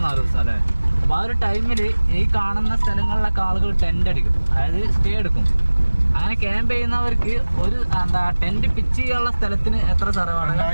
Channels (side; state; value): both; inverted; correlation -1.00